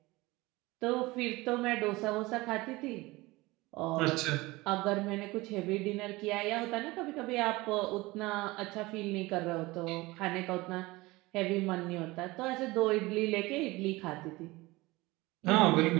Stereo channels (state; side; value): quieter; left; 21.3 dB